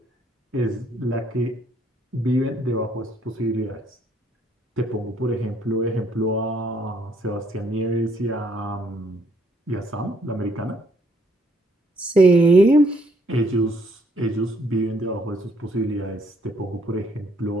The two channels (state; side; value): normal; both; correlation 0.67